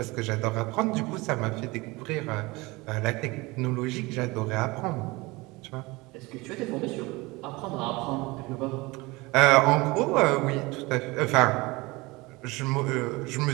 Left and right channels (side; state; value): left; quieter; 23.1 dB